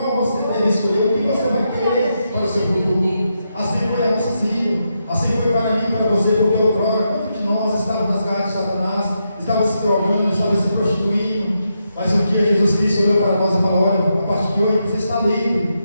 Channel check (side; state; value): both; inverted; correlation -0.83